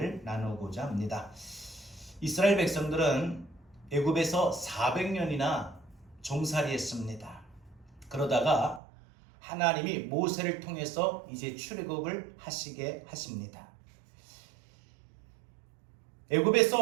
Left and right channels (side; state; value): left; drops out; at 8.8 s